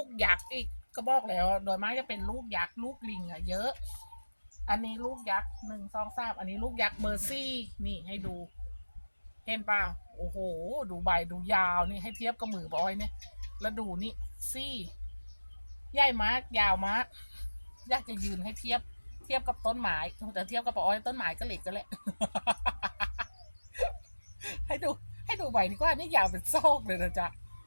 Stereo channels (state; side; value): inverted; both; correlation -1.00